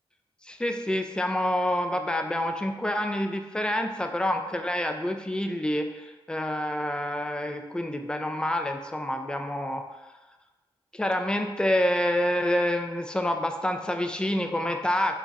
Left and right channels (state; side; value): normal; both; correlation 0.86